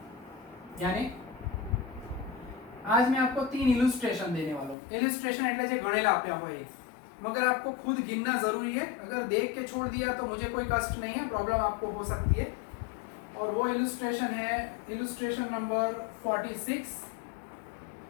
यानी आज मैं आपको 3 इलुस्ट्रेशन देने वाला हूँ। इलुस्ट्रेशन એટલે જે ગણેલા આપ્યા હોય, मगर आपको खुद गिनना जरूरी है। अगर देख के छोड़ दिया तो मुझे कोई कष्ट नहीं है, प्रॉब्लम आपको हो सकती है। और वो इलुस्ट्रेशन है इलुस्ट्रेशन नंबर 46,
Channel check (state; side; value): drops out; right; at 4.8 s